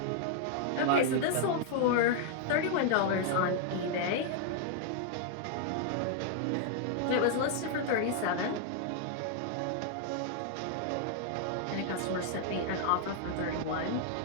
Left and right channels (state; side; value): different; both; correlation 0.00